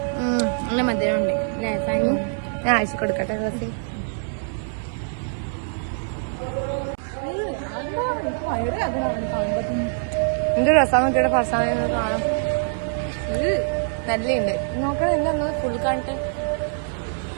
നല്ല മധുരമുണ്ട് അല്ലേ സാനി? ഞാൻ അയച്ചു കൊടുക്കട്ടെ. റസി എന്ത് രസം നോക്കിയുടെ ഫർസാന കാണാം. നല്ലുണ്ട്. നോക്കണം എന്താ ഫുൾ കാണിട്ട്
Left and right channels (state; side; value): silent; left; digital silence